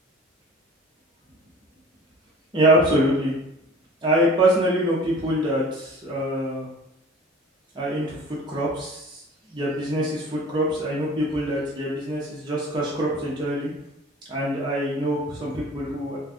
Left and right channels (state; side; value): normal; both; correlation 0.44